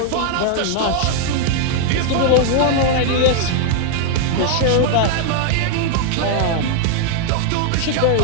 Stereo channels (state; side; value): different; both; correlation 0.00